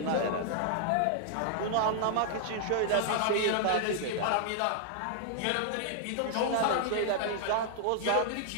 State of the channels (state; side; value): different; both; correlation -0.01